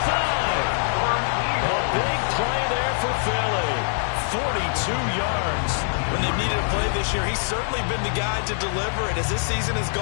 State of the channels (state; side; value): silent; right; digital silence